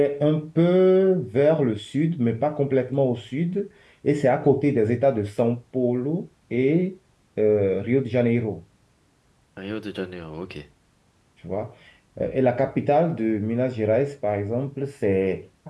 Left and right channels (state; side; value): identical; both; correlation 1.00